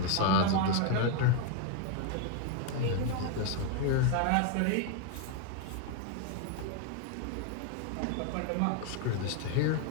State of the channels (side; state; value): both; different; correlation 0.01